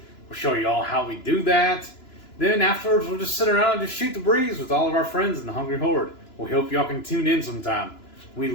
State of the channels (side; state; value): right; late; 2.9 ms